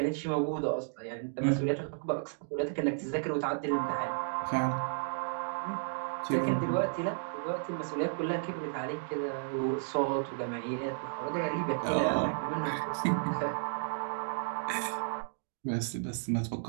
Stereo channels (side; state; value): left; silent; digital silence